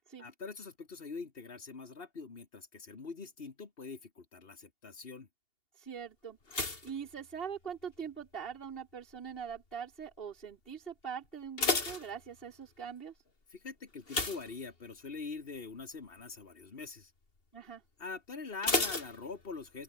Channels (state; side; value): late; right; 2.8 ms